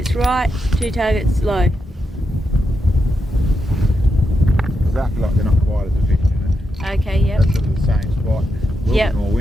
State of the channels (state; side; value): normal; both; correlation 0.85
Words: right, 2 targets low. Exactly like they're not quite as efficient. Okay, yep. That's sort of the same spot. A little Yep. bit more